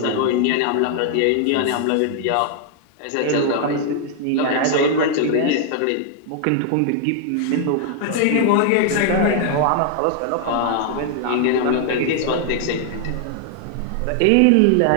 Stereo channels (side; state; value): both; different; correlation 0.00